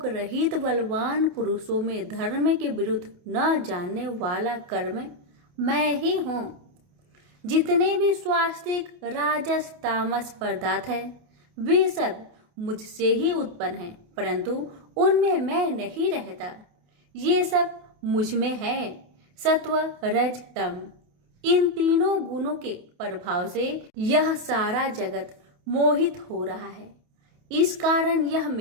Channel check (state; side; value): late; left; 28 ms